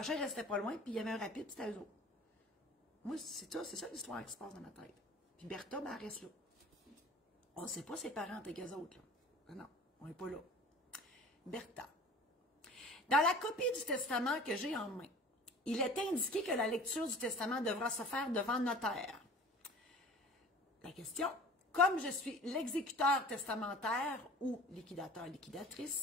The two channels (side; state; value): both; normal; correlation 0.44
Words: restait pas loin, puis il y avait un Rapide, c'était eux autres. Moi, c'est ça l'histoire qui se passe dans ma tête. Puis Bertha, ben, elle reste là. On ne sait pas ses parents avec eux autres, là. Ah non, on n'est pas là. Bertha. Dans la copie du testament que j'ai en main, il est indiqué que la lecture du testament devra se faire devant notaire. La question, comme je suis l'exécuteur testamentaire ou liquidateur,